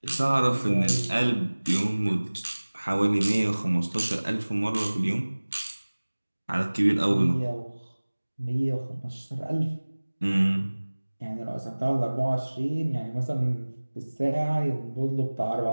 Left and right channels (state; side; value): inverted; both; correlation -1.00